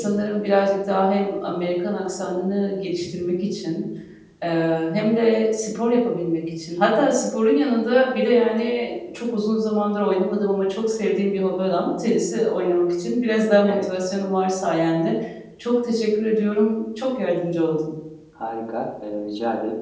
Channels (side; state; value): both; identical; correlation 1.00